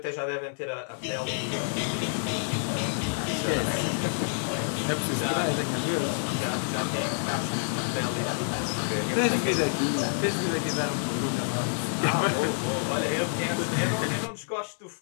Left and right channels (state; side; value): silent; right; 59 dB below the other